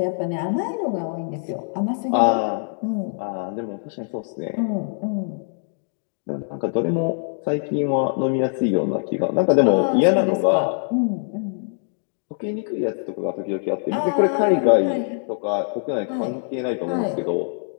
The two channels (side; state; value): right; silent; 63 dB below the other